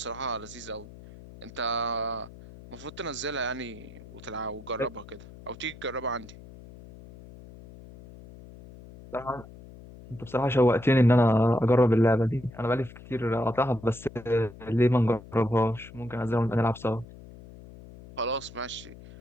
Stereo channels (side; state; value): left; noise; hum, 18 dB below the sound